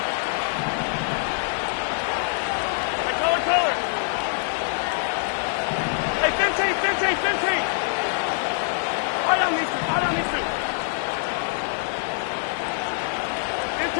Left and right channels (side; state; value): right; silent; digital silence